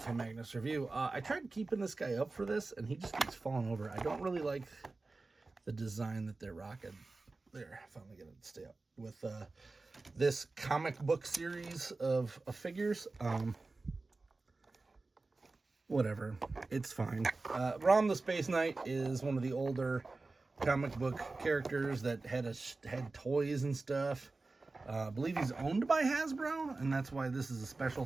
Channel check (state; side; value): quieter; left; 3.5 dB